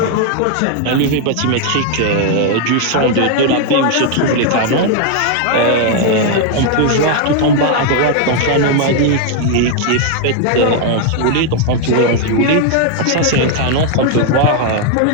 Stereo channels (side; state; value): both; different; correlation 0.00